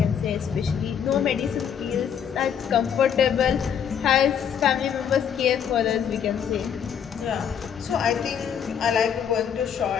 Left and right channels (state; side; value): quieter; right; 8.1 dB